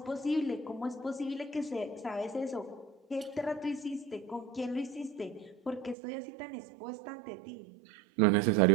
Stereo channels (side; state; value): left; drops out; at 6.0 s